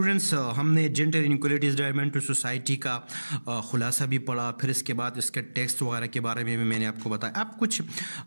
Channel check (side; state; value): both; inverted; correlation -1.00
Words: ہم نے جینڈر انیکولیٹیز ڈرائیون ٹو سوسائٹی کا خلاصہ بھی پڑھا، پھر اس کے بعد اس کے ٹیکسٹ وغیرہ کے بارے میں بھی میں نے آپ کو بتایا. اب کچھ